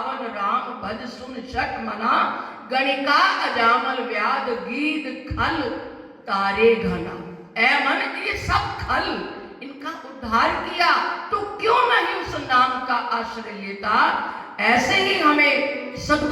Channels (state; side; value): identical; both; correlation 1.00